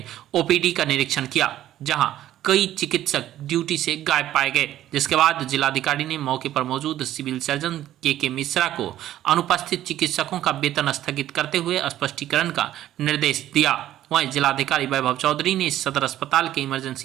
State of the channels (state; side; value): quieter; left; 12.9 dB